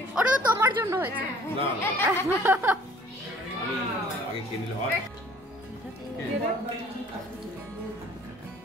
ওটা তো তোমার জন্য হয়েছে। আগে খেয়ে নিলে হয়।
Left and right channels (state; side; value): normal; both; correlation 0.54